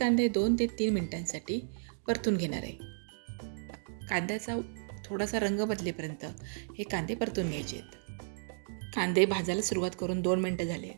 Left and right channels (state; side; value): silent; left; digital silence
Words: 2 ते 3 मिनिटांसाठी परतून घेणार आहे. कांद्याचा थोडासा रंग बदलेपर्यंत हे कांदे परतून घ्यायचे आहेत. कांदे भाजायला सुरुवात करून 2 मिनिटं झाले